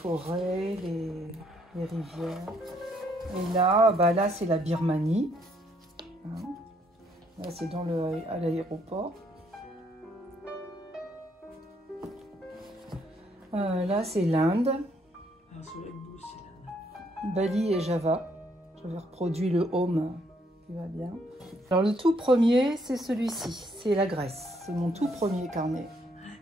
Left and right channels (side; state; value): both; normal; correlation 0.70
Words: les rivières. Et là, là c'est la Birmanie. Hein. Là c'est à l'aéroport. Là c'est l'Inde. Bali et Java. J'avais reproduit le home qui va bien. Alors le tout premier c'est celui-ci, c'est la Grèce. C'est mon tout premier carnet.